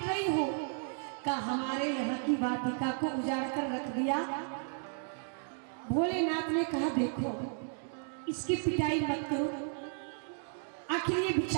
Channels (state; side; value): silent; left; 55 dB below the other